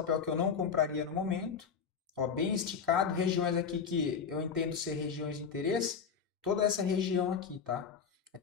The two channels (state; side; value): quieter; right; 6.4 dB